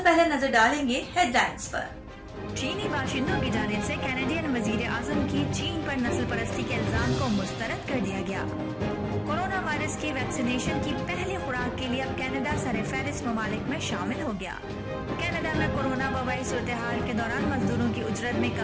पहले नजर डालेंगे हेडलाइंस पर। चीनी बाशिंदों की जानिब से कैनेडियन वजीर आजम की चीन पर नस्ल परस्ती के इल्जाम को मुस्तरद कर दिया गया। कोरोना वायरस की वैक्सीनेशन की पहली खुराक के लिए अब कनाडा सरफहरिस्त ममालिक में शामिल हो गया। कनाडा में कोरोना वबाई सूरत हाल के दौरान मजदूरों की उजरत में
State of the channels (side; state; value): both; identical; correlation 1.00